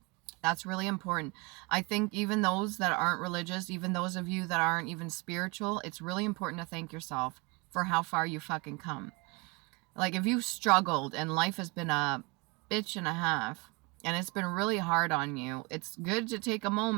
That's really important. I think even those that aren't religious, even those of you that aren't even spiritual, it's really important to thank yourself for how far you fucking come. Like if you've struggled and life has been a bitch and a half and it's been really hard on you, it's good to take a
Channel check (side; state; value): left; quieter; 28.1 dB